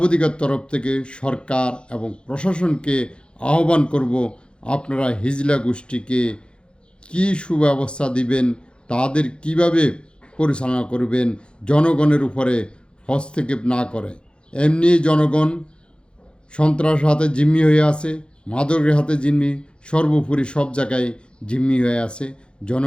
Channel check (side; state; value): right; late; 0.055 ms